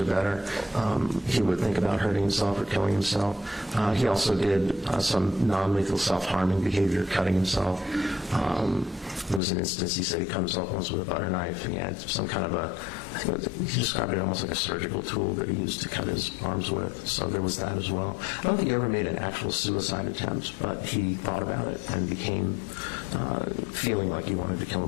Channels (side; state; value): right; drops out; at 9.4 s